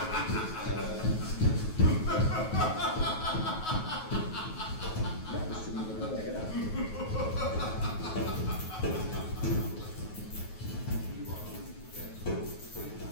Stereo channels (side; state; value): right; late; 9.3 ms